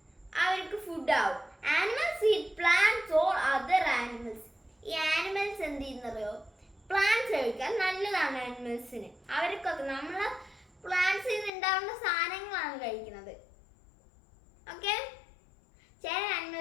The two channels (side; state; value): right; drops out; at 11.5 s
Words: അവർക്ക് ഫുഡ് ആവും. Animals eat plants or other animals. ഈ ആനിമൽസ് എന്ത് ചെയ്യുന്നറിയോ? പ്ലാന്റ്സ് കഴിക്കാൻ നല്ലതാണ് ആനിമൽസിന്. അവർക്കൊക്കെ നമ്മള് പ്ലാന്റ്സിൽ നിന്ന് ഉണ്ടാവുന്ന സാധനങ്ങളാണ് കഴിക്കുന്നത്. ഓക്കെ. ചില